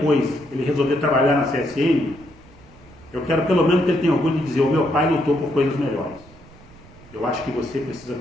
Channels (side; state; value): right; noise; rumble, 23 dB below the sound